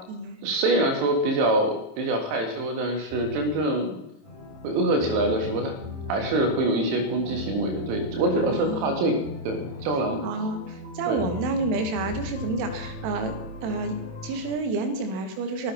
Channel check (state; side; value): late; left; 27 ms